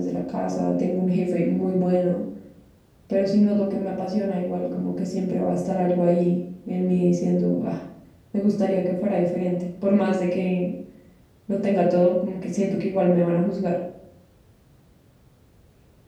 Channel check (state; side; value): identical; both; correlation 1.00